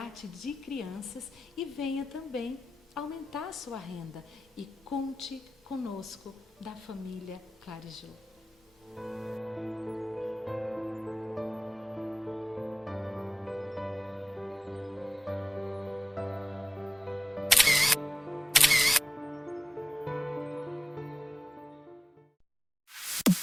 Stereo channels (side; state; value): both; normal; correlation 0.96